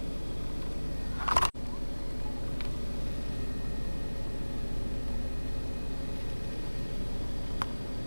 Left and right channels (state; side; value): inverted; both; correlation -1.00